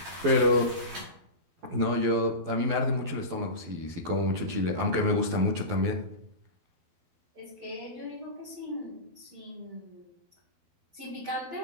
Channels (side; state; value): left; late; 12 ms